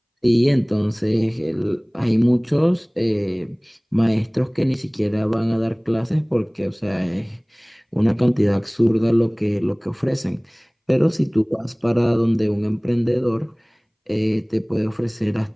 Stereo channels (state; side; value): identical; both; correlation 1.00